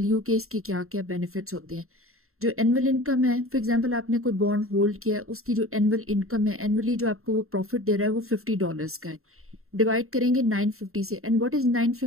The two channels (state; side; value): late; left; 0.62 ms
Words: you कि इसके क्या क्या बेनिफिट्स होते हैं। जो एनुअल इनकम है, फॉर एग्जांपल आपने कोई बॉन्ड होल्ड किया है, उसकी जो एनुअल इनकम है, एनुअली जो आपको वो प्रॉफिट दे रहा है वो $50 का है। डिवाइड करेंगे 950 से। And what is